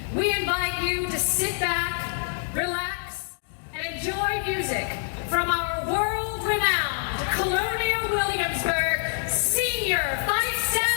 we invite you to sit back, relax, and enjoy music from our world-renowned Colonial Williamsburg Senior Fifes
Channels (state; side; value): silent; right; digital silence